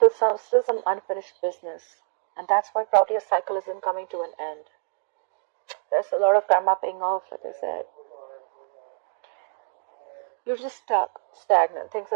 some unfinished business. And that's why probably a cycle isn't coming to an end. There's a lot of karma paying off, like I said. You're just stuck, stagnant. Things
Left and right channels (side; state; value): left; silent; 59 dB below the other